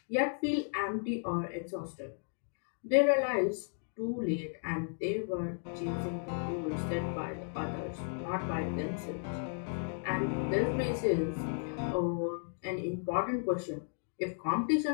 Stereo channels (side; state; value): right; silent; digital silence